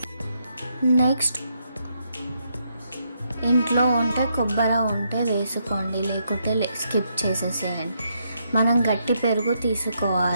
నెక్స్ట్ ఇంట్లో ఉంటే కొబ్బరి ఉంటే వేసుకోండి, లేకుంటే స్కిప్ చేసేసేయండి. మనం గట్టి పెరుగు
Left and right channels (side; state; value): both; inverted; correlation -0.77